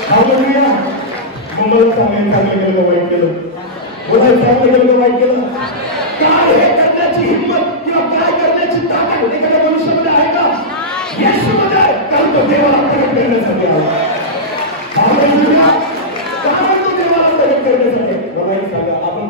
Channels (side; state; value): both; normal; correlation -0.11